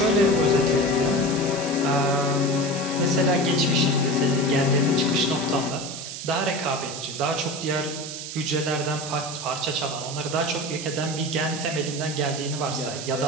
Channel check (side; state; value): right; noise; hiss, 8 dB below the sound